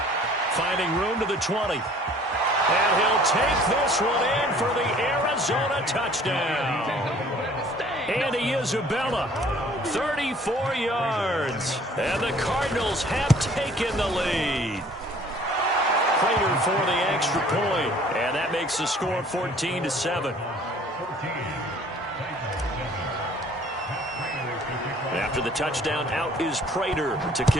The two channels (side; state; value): both; normal; correlation 0.54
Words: Finding room to the 20. And he'll take this one in for the Arizona touchdown. Andy Isabella, 34 yards. And the Cardinals have taken the lead. Prater for the extra point. And that makes the score 14-7. After the touchdown, out is Prater to